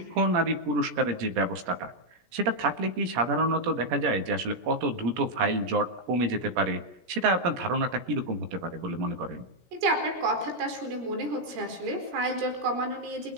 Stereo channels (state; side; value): late; left; 17 ms